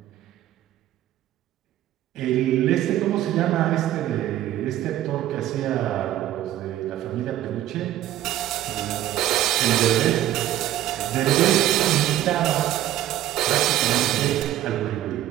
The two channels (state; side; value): quieter; left; 13.4 dB